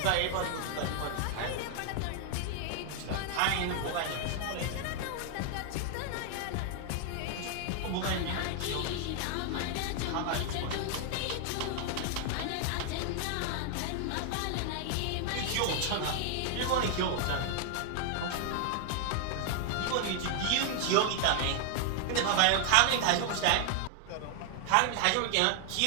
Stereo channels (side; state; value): both; different; correlation 0.00